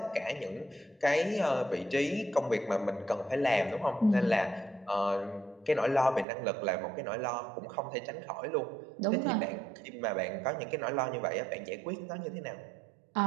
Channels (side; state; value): left; drops out; at 6.2 s